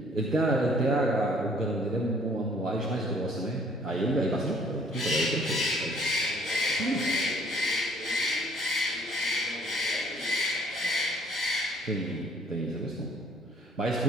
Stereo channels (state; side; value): normal; both; correlation 0.59